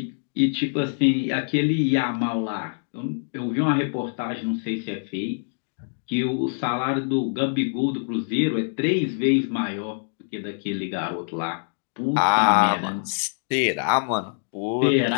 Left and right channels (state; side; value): silent; right; digital silence